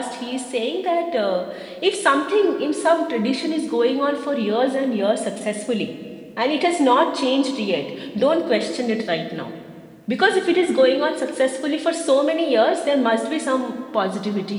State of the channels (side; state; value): both; identical; correlation 1.00